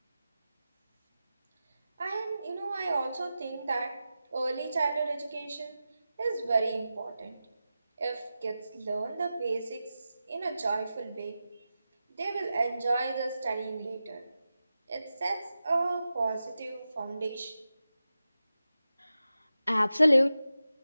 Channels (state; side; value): inverted; both; correlation -0.92